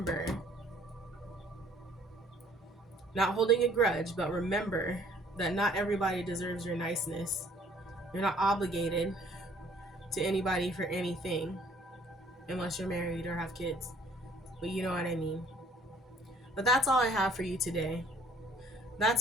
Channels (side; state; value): both; normal; correlation 0.58